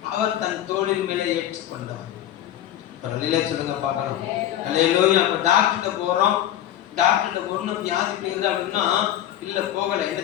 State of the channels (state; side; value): quieter; right; 11.9 dB